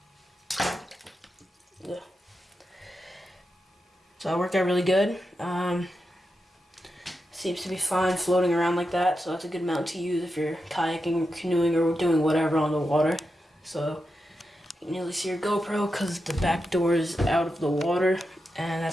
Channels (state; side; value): normal; both; correlation 0.88